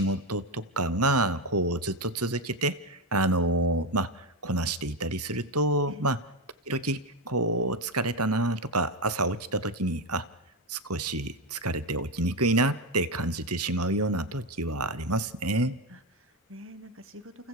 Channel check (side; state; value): both; normal; correlation 0.11